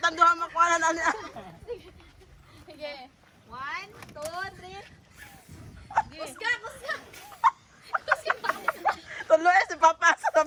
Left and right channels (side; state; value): both; identical; correlation 1.00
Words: duha makuanan ani. Sige. 1, 2, 3. Kusga. Tuloy si Papa sa